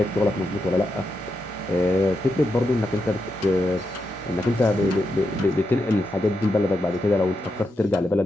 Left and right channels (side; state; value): both; normal; correlation 0.85